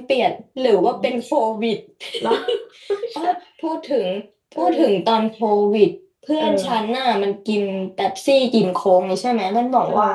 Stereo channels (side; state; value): both; identical; correlation 1.00